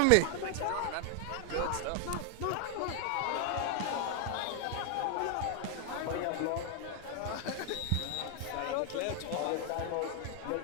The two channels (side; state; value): both; different; correlation 0.00